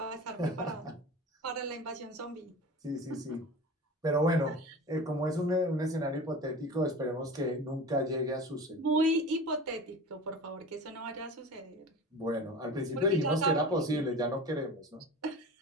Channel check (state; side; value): normal; both; correlation 0.34